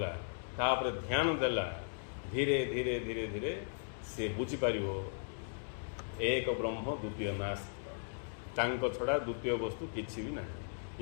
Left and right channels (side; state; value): right; silent; digital silence